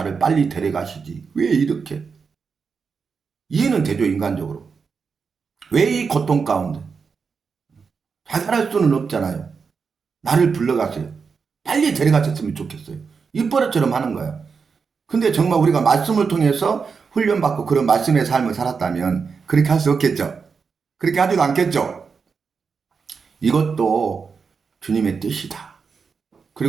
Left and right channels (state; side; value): quieter; left; 5.5 dB